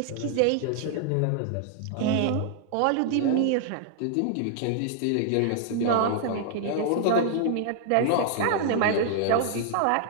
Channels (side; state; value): both; different; correlation 0.00